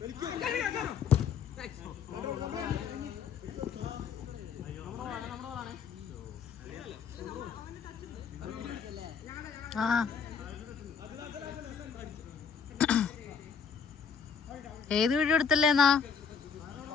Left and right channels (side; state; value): right; quieter; 6.5 dB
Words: ആ ഏത് വീഡിയോ എടുത്തല്ലേന്നാ?